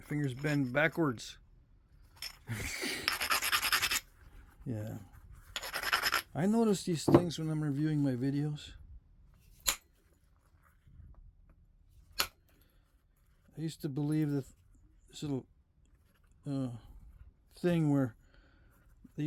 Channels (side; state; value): both; identical; correlation 1.00